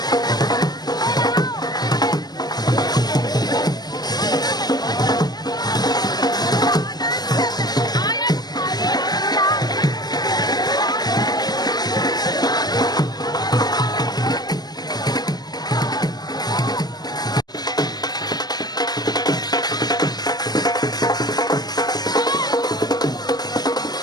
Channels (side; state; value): right; late; 0.19 ms